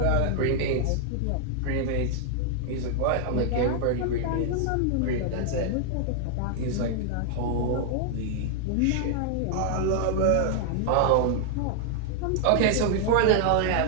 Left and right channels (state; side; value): different; both; correlation -0.01